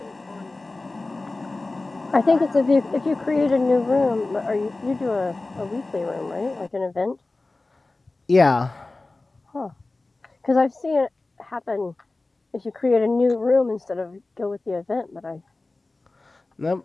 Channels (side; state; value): right; quieter; 3.2 dB